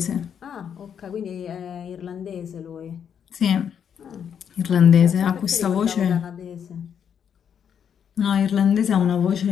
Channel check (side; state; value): right; quieter; 8.0 dB